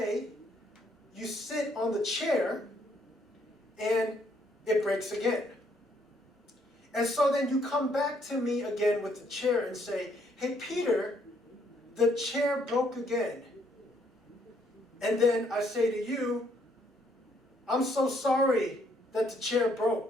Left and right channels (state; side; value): normal; both; correlation 0.69